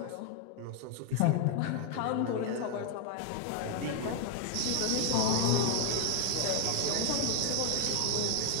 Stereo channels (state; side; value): different; both; correlation 0.00